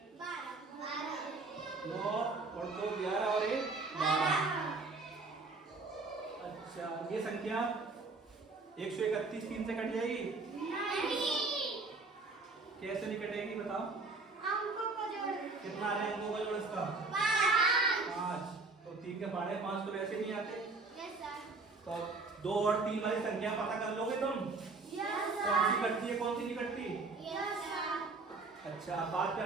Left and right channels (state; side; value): quieter; left; 3.8 dB